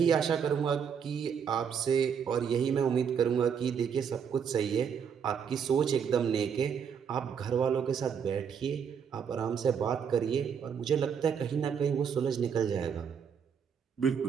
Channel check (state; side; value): quieter; left; 7.2 dB